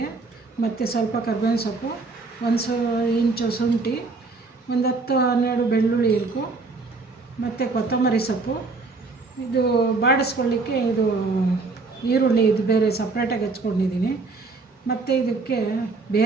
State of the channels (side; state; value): left; quieter; 3.9 dB